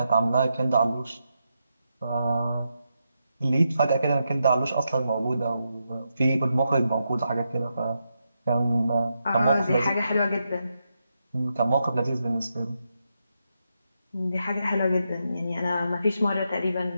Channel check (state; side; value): inverted; both; correlation -0.84